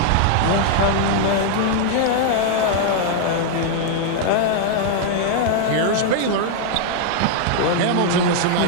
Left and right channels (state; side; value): different; both; correlation 0.00